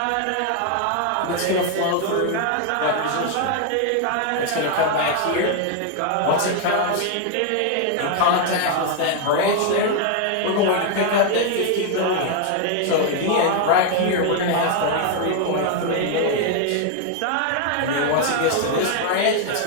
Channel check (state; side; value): different; both; correlation 0.00